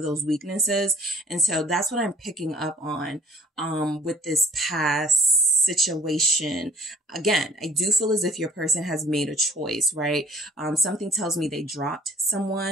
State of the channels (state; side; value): normal; both; correlation 0.54